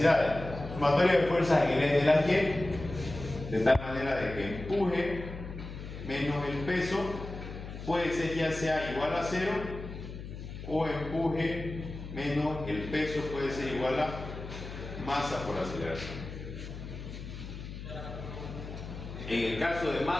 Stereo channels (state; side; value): noise; left; hum, 10 dB below the sound